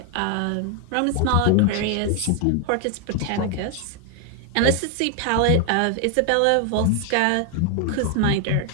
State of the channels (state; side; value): different; both; correlation 0.01